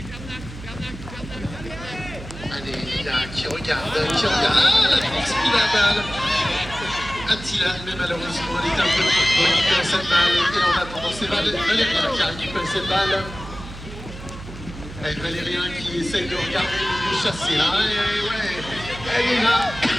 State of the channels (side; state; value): right; noise; hum, 13 dB below the sound